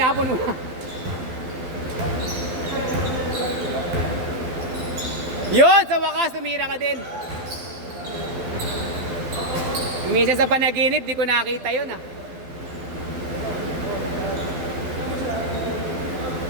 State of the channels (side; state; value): left; late; 12 ms